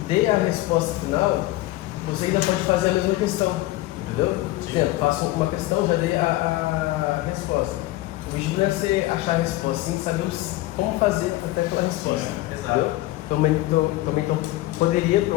dê a resposta final, você ainda pode fazer a mesma questão, entendeu? Por exemplo, faço uma questão, já dei a resposta. O objetivo não é você achar a resposta, sim saber como fazer até aquela resposta. Exato. Entendeu? Também poderia, para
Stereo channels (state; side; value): quieter; right; 17.5 dB